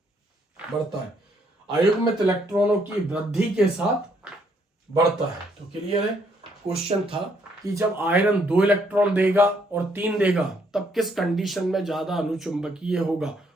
बढ़ता है, अयुग्मित इलेक्ट्रॉनों की वृद्धि के साथ बढ़ता है। तो क्लियर है। क्वेश्चन था कि जब आयरन 2 इलेक्ट्रॉन देगा और 3 देगा तब किस कंडीशन में ज्यादा अनुचुंबकीय होगा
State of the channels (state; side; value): normal; both; correlation 0.70